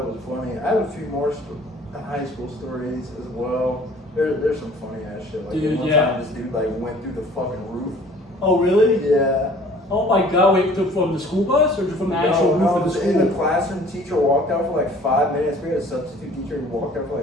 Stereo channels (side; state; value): both; normal; correlation 0.51